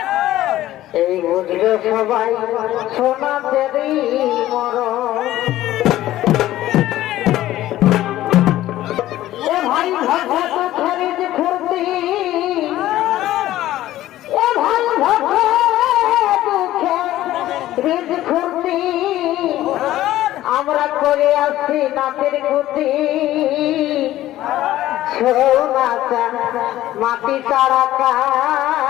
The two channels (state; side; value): quieter; right; 14.5 dB